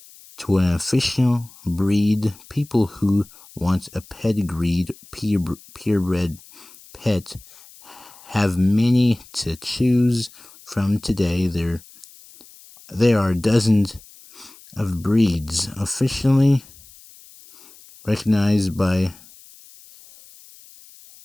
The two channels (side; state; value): left; noise; hiss, 23 dB below the sound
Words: to an official breed, people who want a pedigreed, purebred pet have many to choose from today. There are dozens of breeds officially recognized by